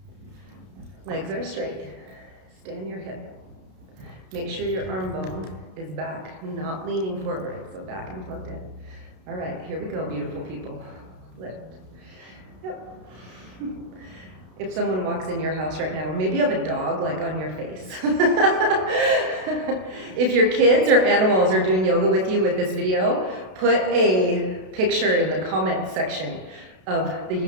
Legs are straight. Stand your hip. Make sure your arm bone is back, not leaning forward, so back and plugged in. All right, here we go, beautiful people. Lift. Yep. If someone walks in your house right now, or maybe you have a dog like on your face. If your kids or animals are doing yoga with you with this video, put a picture in the comments section of the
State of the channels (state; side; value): late; left; 32 ms